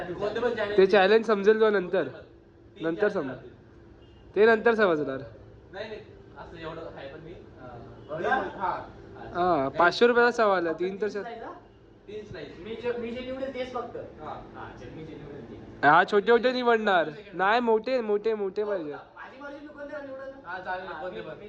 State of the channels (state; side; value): identical; both; correlation 1.00